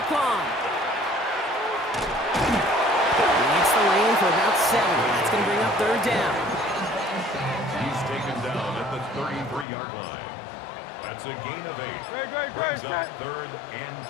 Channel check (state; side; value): drops out; right; at 9.7 s